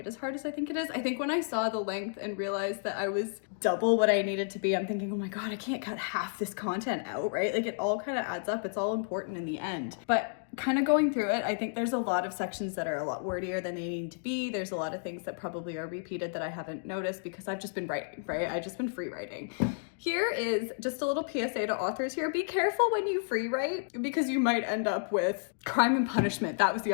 as hard as I think it is. I think when I saw the length and realized that I was double what I needed to be, I'm thinking, oh my god, I can't cut half this content out, right? Like, it all kind of adds up. It's all important in the end. But kind of going through it, I think there's a lot of sections that are a lot wordier than they need to be. There's a lot of things that probably are repeated that I haven't noticed because I've just been writing, right? I've just been free writing. Here is just a little PSA to authors here. Be careful when you free write, because you might end up with Crime and Punishment. That was the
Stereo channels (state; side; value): silent; right; digital silence